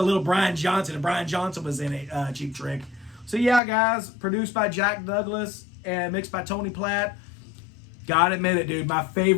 little Brian Johnson, and Brian Johnson was in it, Cheap Trick. So yeah, guys, produced by Jack Douglas and mixed by Tony Platt. Gotta admit it, dude, my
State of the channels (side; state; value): right; drops out; at 3.6 s